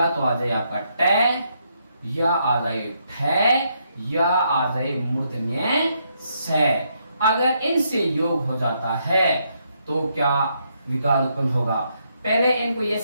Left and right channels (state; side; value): inverted; both; correlation -0.76